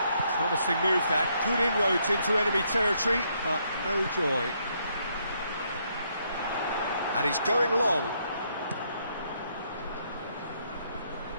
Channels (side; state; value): both; inverted; correlation -0.73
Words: Promising move that. Good inroads into enemy territory, but no joy. And he's going long.